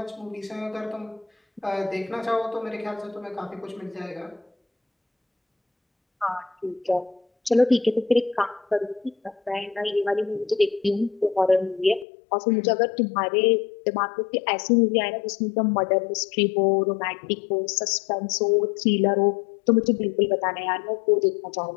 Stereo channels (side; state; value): right; drops out; at 12.1 s